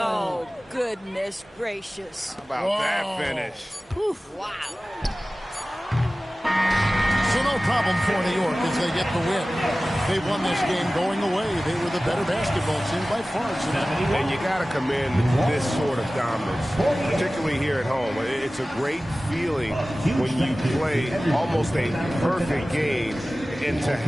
Oh, goodness gracious. How about that finish? Wow. So no problem for New York as they get the win. They won this game going away. They were the better basketball team by far tonight. And you got to commend this sort of dominance, particularly here at home. It's a great feeling when you play almost a perfect game and to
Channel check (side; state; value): both; normal; correlation 0.97